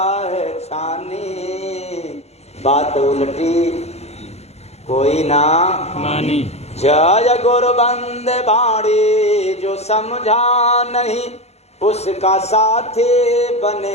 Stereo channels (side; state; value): right; late; 0.31 ms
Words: है छानी, बात उलटी कोई ना मानी। जय गुरु बंदे बाड़ी जो समझा नहीं, उसका साथी